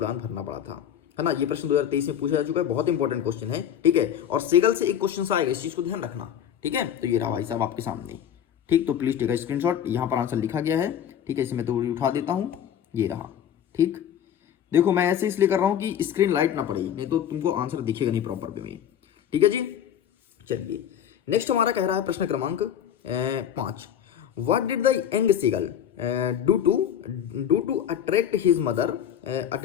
भरना पड़ा था, है ना। ये प्रश्न 2023 में पूछा जा चुका है, बहुत इंपॉर्टेंट क्वेश्चन है। ठीक है, और सेगल से एक क्वेश्चन आएगा, इस चीज को ध्यान रखना। ठीक है, तो ये रहा भाई साहब आपके सामने। ठीक, तो प्लीज टेक अ स्क्रीनशॉट, यहाँ पर आंसर लिखा गया है। ठीक है, इसे मैं तो उठा देता हूँ, ये रहा। ठीक, देखो मैं ऐसे इसलिए कर रहा हूं कि स्क्रीन लाइट ना पड़े, नहीं तो तुमको आंसर दिखेगा नहीं प्रॉपर वे में। ठीक है जी, चलिए नेक्स्ट हमारा कह रहा है प्रश्न क्रमांक 5। What did the young seagull do to attract his mother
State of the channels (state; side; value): quieter; right; 9.6 dB